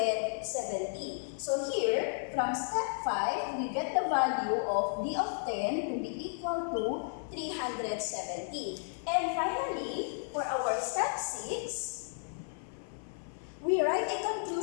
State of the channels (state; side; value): silent; right; 55 dB below the other